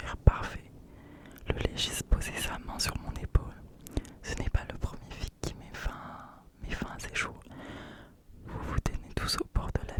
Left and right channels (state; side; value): identical; both; correlation 1.00